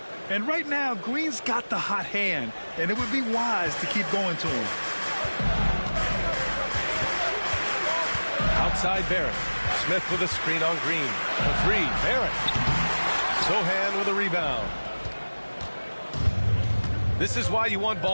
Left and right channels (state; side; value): inverted; both; correlation -1.00